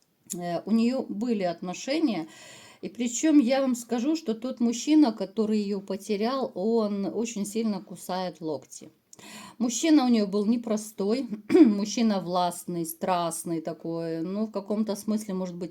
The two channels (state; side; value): identical; both; correlation 1.00